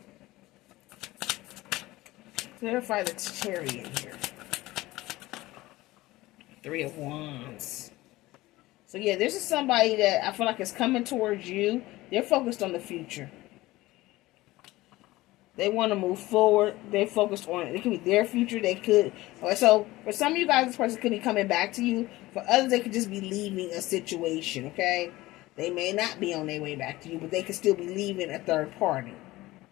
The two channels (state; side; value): quieter; right; 18.6 dB